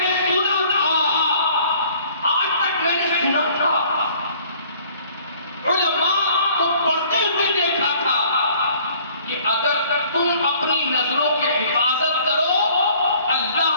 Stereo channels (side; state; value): both; inverted; correlation -0.56